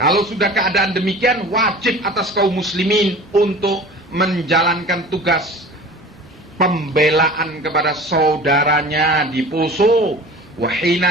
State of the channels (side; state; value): both; normal; correlation 0.40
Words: kalau sudah keadaan demikian, wajib atas kaum muslimin untuk menjalankan tugas pembelaan kepada saudaranya di Poso. Wa